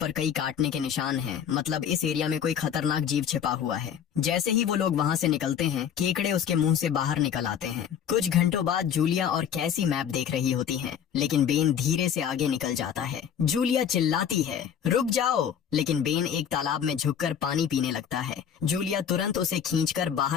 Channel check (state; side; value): quieter; right; 8.5 dB